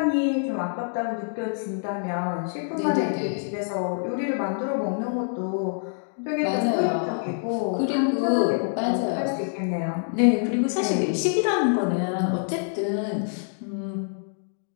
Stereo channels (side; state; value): right; silent; digital silence